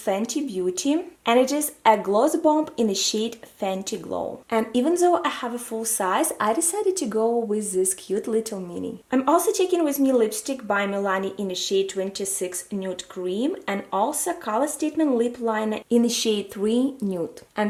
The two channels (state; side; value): identical; both; correlation 1.00